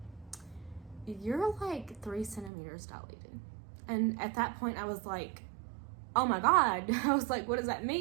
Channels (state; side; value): drops out; left; at 2.5 s